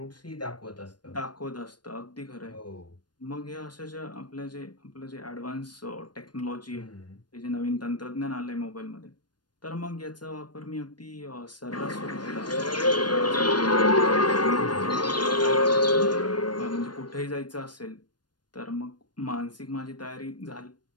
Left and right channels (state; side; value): late; right; 0.70 ms